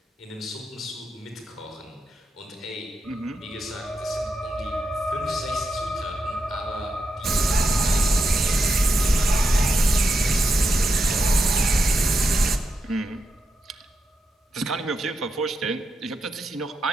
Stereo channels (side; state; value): both; normal; correlation 0.85